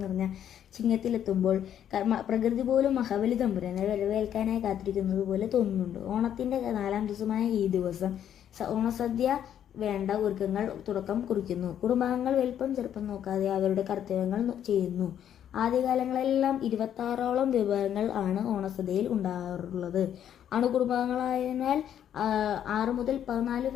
നിറഞ്ഞ ചിങ്ങത്തിലെത്തുമ്പോൾ പ്രകൃതി പോലും മഹാബലി തമ്പുരാനെ വരവേൽക്കാനായി കാത്തിരിക്കുന്നത് പോലെ തോന്നുന്നുണ്ട്. ഓണത്തിന്റെ 4ാം ദിവസമായ ഈ ദിവസം ഓണസദ്യ വേണ്ട ഒരുക്കങ്ങൾ തുടക്കം കുറിക്കുന്നു. കുടുംബാംഗങ്ങൾ വലിപ്പം ചെറുപ്പം നോക്കാതെ അവരുടെ കർത്തവ്യങ്ങൾ ചെയ്യുന്നു. ആദ്യകാലങ്ങളെല്ലാം 26ഓളം വിഭവങ്ങൾ ആണ് ഓണസദ്യയിൽ ഉണ്ടാകാറുള്ളത്. അണുകുടുംബങ്ങളായതിനാൽ 6 മുതൽ 14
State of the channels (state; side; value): quieter; right; 9.9 dB